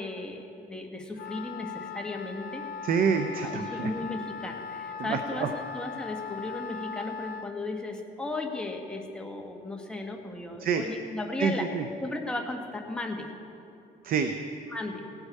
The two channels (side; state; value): both; normal; correlation 0.51